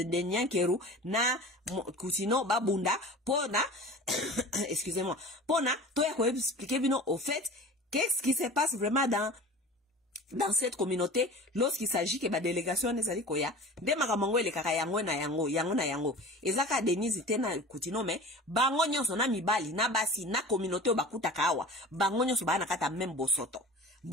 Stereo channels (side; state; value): both; normal; correlation 0.38